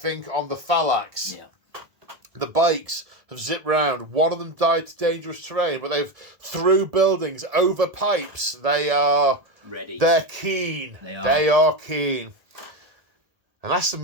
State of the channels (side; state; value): left; late; 1.7 ms